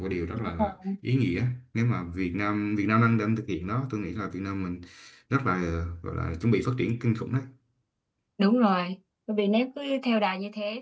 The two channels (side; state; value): both; identical; correlation 1.00